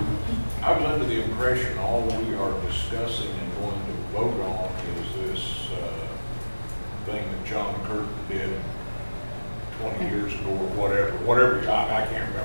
was under the impression all we are discussing and going to vote on is this thing that John Curtin did 20 years ago or whatever. I can't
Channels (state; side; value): inverted; both; correlation -1.00